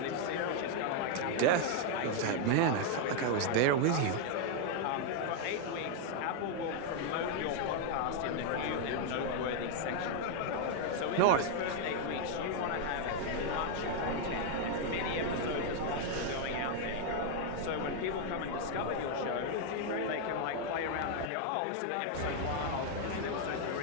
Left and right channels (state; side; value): different; both; correlation 0.00